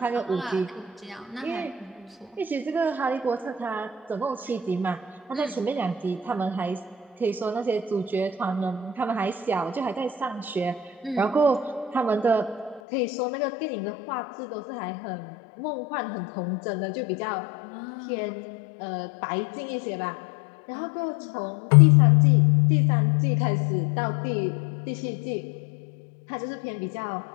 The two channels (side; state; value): right; drops out; at 12.8 s